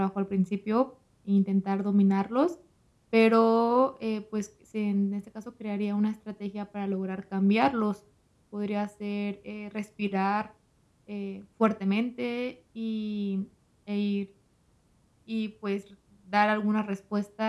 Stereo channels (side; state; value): both; identical; correlation 1.00